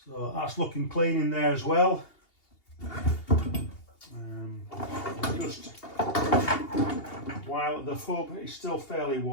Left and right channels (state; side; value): late; right; 2.8 ms